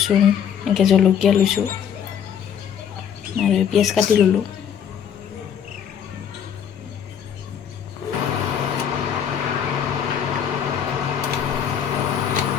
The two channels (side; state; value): right; quieter; 8.4 dB